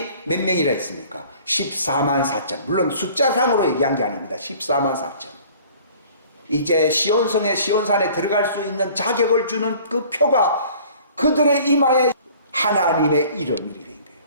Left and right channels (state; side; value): inverted; both; correlation -0.50